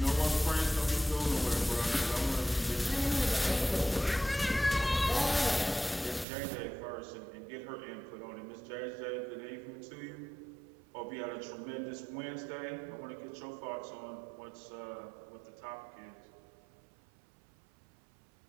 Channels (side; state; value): left; drops out; at 6.2 s